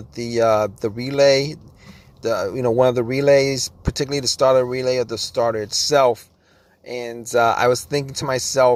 relay, one of the relays, particularly the starter relay, or the starter itself. And I was thinking to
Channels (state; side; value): identical; both; correlation 1.00